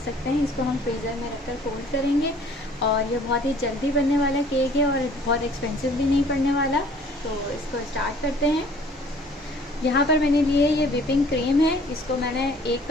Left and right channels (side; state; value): both; normal; correlation 0.54